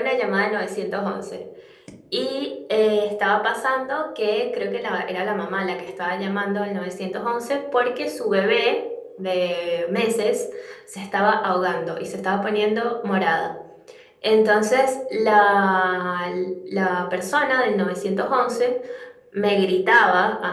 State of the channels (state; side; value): identical; both; correlation 1.00